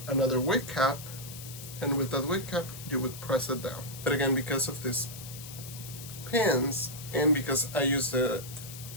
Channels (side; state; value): left; noise; hiss, 12 dB below the sound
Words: another wig cap, and with that wig cap, you would press it down. But again, because of these pins, and because I use the